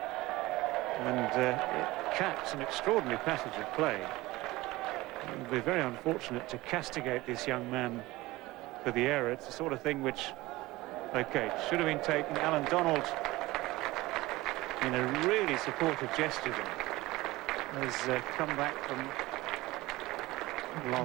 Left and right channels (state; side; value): quieter; left; 19.5 dB